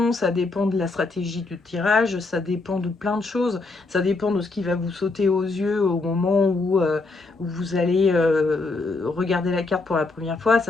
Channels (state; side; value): quieter; right; 3.5 dB